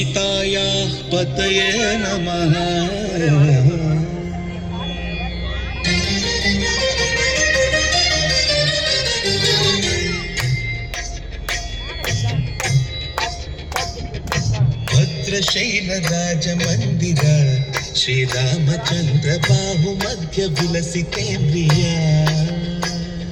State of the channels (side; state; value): both; identical; correlation 1.00